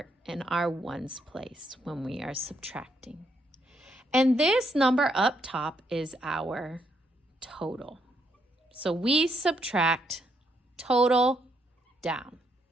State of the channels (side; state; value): both; normal; correlation 0.75